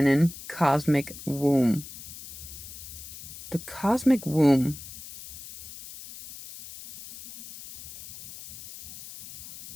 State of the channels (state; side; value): noise; left; hiss, 14 dB below the sound